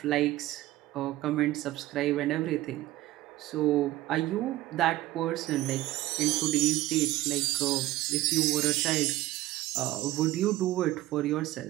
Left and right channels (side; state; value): left; quieter; 16.6 dB